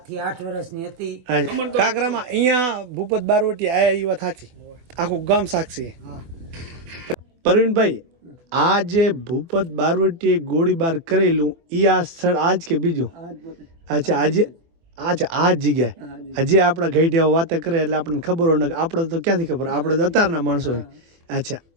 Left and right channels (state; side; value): late; left; 24 ms